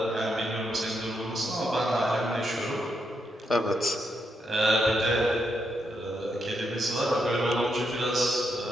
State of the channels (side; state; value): both; normal; correlation 0.81